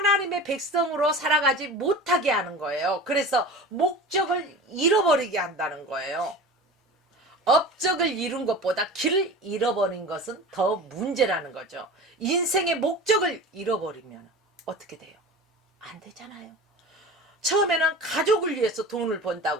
백성으로 살아가지 못하게 하는 거예요. 그래서 목적을 잃어버리게 한다는 거예요. 업적을 이룬 것보다 길을 잃어버린 것은 더 문제라는 거죠. 인생의 목적을 잃어버리면 어떻게 돼요? 안 되잖아요. 처음에는 가족을 위해서 돈을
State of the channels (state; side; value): normal; both; correlation 0.35